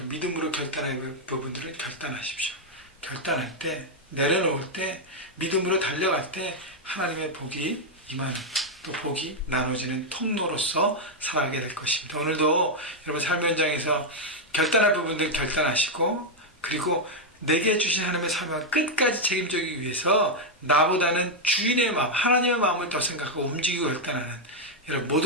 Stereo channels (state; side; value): normal; both; correlation 0.00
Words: 믿음으로 결단할 부분들은 결단하십시오. 결단할 때, 내려놓을 때, 믿음으로 달려갈 때 하나님의 복이 임하는, 또 복이 나눠지는 통로로서 살아가게 될 것입니다. 오늘도 여러분 삶의 현장에서 결단할 부분들 결단하시고, 그리고 내게 주신 하나님의 사명을 끝까지 책임지기 위해서 나보다는 주인의 마음, 하나님의 마음을 더 생각하고 움직이고 결단하는 여러분